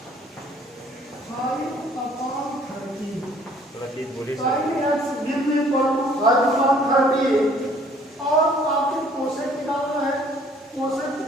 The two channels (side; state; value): both; normal; correlation 0.58